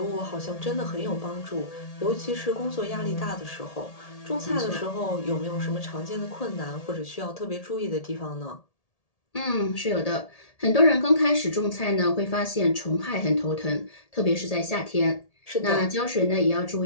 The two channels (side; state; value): right; late; 1.8 ms